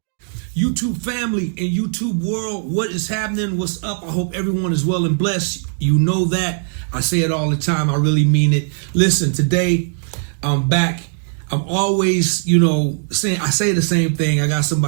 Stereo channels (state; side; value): silent; left; digital silence